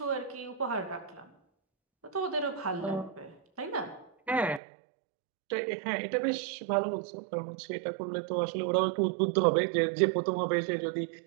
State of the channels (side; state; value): left; drops out; at 4.6 s